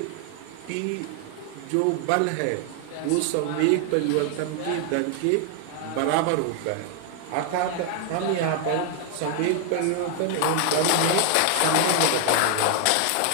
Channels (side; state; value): both; different; correlation 0.00